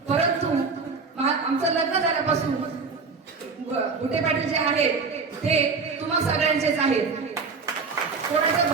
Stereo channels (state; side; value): quieter; left; 4.7 dB